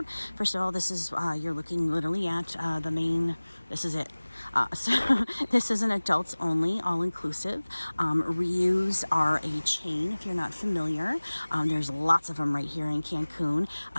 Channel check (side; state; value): both; inverted; correlation -1.00